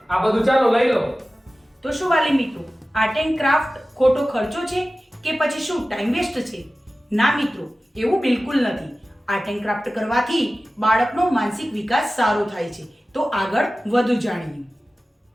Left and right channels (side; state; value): both; normal; correlation 0.96